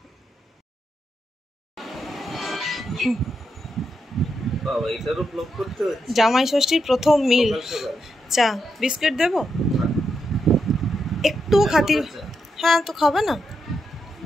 জামাই ষষ্ঠীর প্রথম মিল, চা বিস্কিট দেবো একটু খাতির। হ্যাঁ তো খাবে না,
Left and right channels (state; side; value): normal; both; correlation 0.83